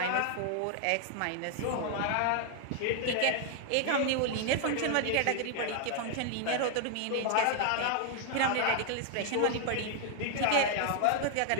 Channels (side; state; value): both; different; correlation 0.00